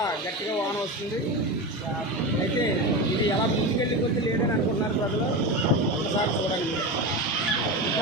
గట్టిగా వాన వస్తుంది. అయితే ఇది ఎలా ముందుకెళ్ళి కొద్ది లేదని అనుకుంటున్నారు ప్రజలు. ఒకసారి చూడండి.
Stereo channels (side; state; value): both; normal; correlation 0.21